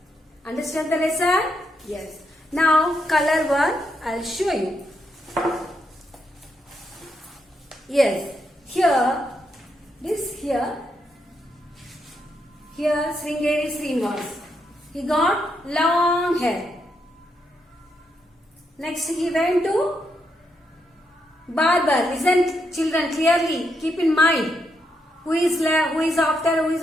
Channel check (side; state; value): both; normal; correlation 0.80